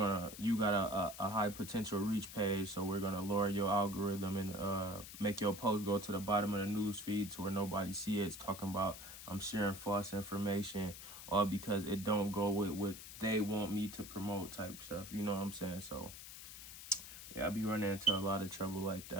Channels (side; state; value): left; noise; hiss, 12 dB below the sound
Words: you got a high potential reach page, so we're gonna lower your algorithm and make your post go to the bottom of the news feed to where nobody see it. It's talking about I'm sharing false information, all because it don't go with what they want me to promote type stuff. You know what I'm saying? So yeah, I be running into a lot of trouble like